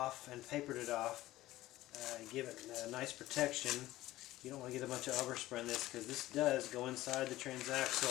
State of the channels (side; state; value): right; quieter; 16.2 dB